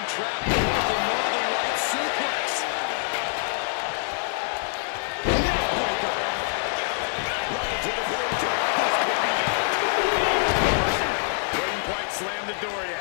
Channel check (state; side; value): silent; right; 62 dB below the other